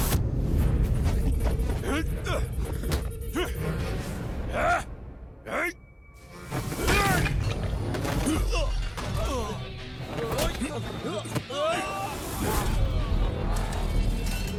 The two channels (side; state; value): both; identical; correlation 1.00